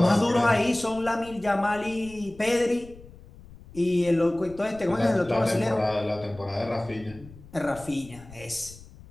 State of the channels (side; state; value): left; noise; rumble, 20 dB below the sound